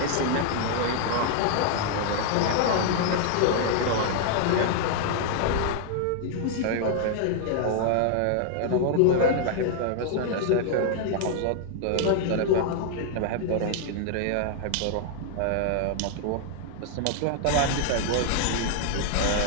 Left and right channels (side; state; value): both; different; correlation 0.00